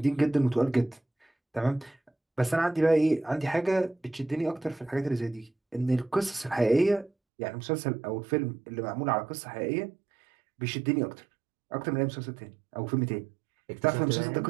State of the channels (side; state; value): left; drops out; at 7.1 s